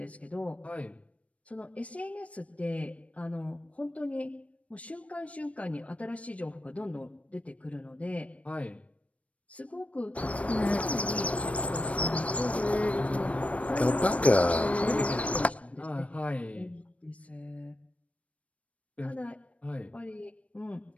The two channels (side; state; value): right; late; 0.065 ms